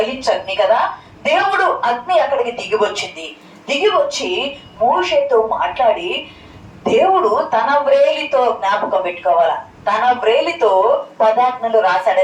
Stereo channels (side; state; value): both; identical; correlation 1.00